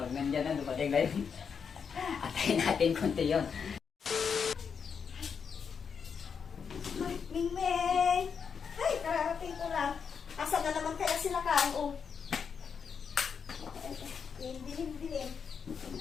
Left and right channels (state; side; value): quieter; right; 6.4 dB